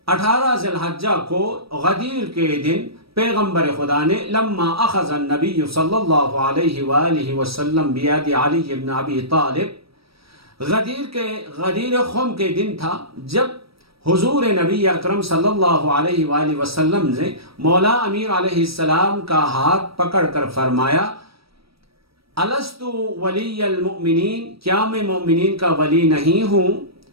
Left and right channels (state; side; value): late; left; 0.76 ms